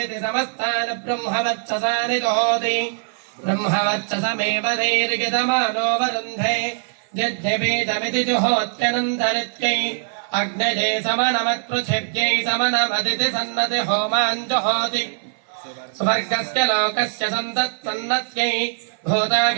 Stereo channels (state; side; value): silent; left; 56 dB below the other